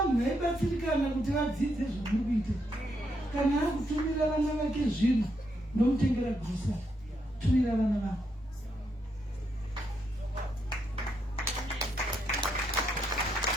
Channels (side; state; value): both; normal; correlation 0.79